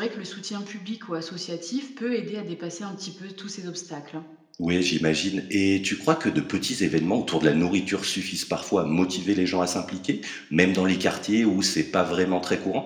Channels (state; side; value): identical; both; correlation 1.00